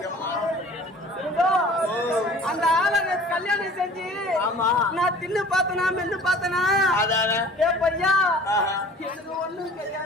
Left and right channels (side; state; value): both; normal; correlation 0.47